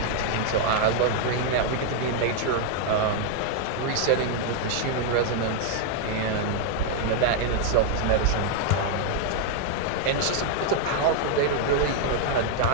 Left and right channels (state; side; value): different; both; correlation 0.00